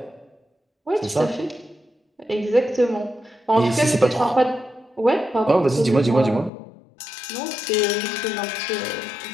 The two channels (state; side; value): drops out; right; at 6.5 s